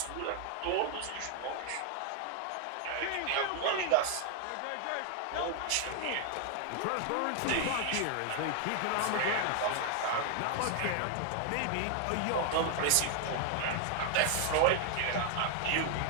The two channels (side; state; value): both; different; correlation 0.00